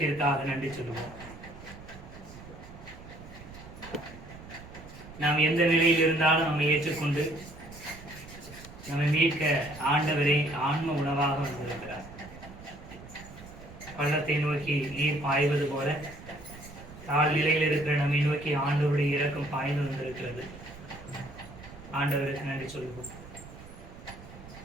நன்றி சொல்லுவோம். நாம் எந்த நிலையில் இருந்தாலும் நம்மை ஏற்றுக்கொண்டு நம்மை மீட்க ஆண்டவரை ஆன்ம உணவாக வந்திருக்கிறார். பள்ளத்தை நோக்கி நீர் பாய்வது போல தாழ்நிலையில் இருக்கிற நம்மை நோக்கி ஆண்டவருடைய இரக்கம் பாய்ந்து வந்திருக்கிறது. ஆண்டவருக்கு நன்றி சொல்லுவோம்.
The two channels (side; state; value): right; noise; rumble, 16 dB below the sound